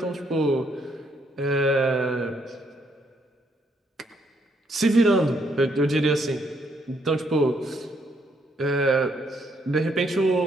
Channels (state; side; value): normal; both; correlation 0.73